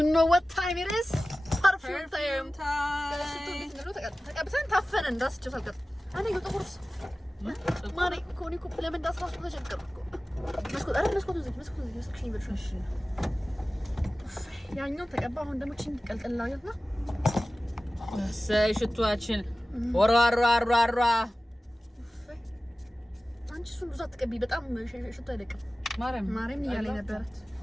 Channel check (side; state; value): both; normal; correlation 0.96